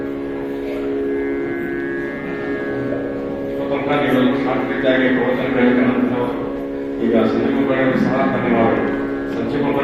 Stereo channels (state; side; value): identical; both; correlation 1.00